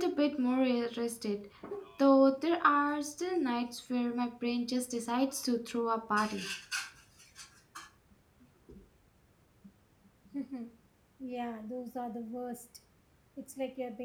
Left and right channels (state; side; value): identical; both; correlation 1.00